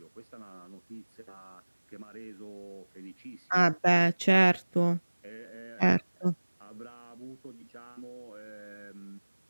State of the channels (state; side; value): inverted; both; correlation -1.00